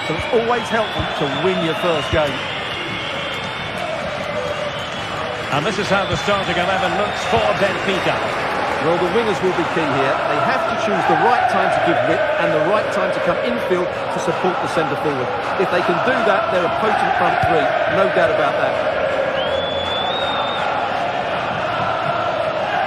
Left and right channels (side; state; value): both; identical; correlation 1.00